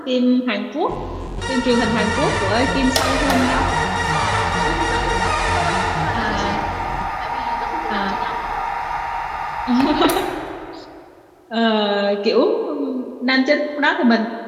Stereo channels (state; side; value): identical; both; correlation 1.00